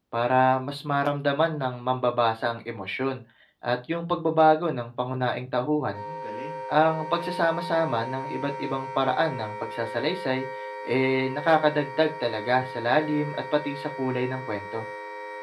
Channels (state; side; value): identical; both; correlation 1.00